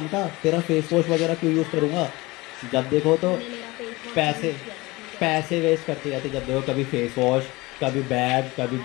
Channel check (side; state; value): right; quieter; 22.1 dB